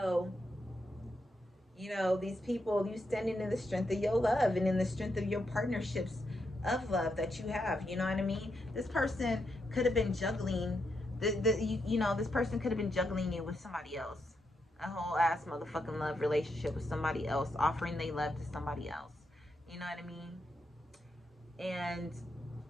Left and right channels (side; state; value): both; normal; correlation 0.82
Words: these people, you standing in the strength of your love and in the strength of your partnerships of love that you have. You know what I mean? This person could have been juggling, this person could have been juggling you with somebody else. A whole ass motherfucking love relationship with somebody else, offering they love to somebody else. You know what I mean? And